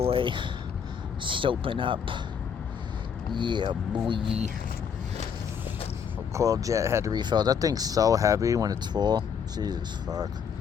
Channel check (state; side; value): quieter; right; 7.2 dB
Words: soaping up. Yeah, boy. Coil jet had to refill. That thing's so heavy when it's full. Jesus fuck.